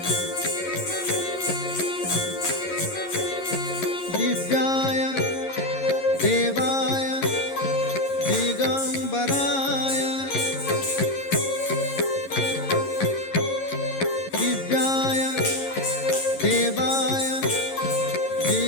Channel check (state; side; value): late; right; 11 ms